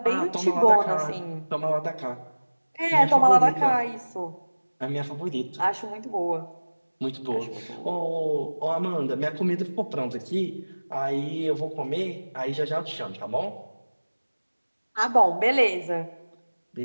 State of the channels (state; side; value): inverted; both; correlation -1.00